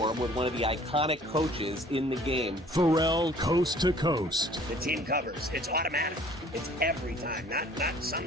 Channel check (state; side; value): normal; both; correlation 0.53